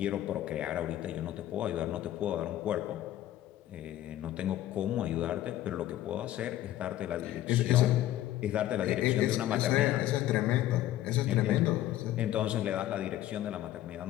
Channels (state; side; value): quieter; right; 13.6 dB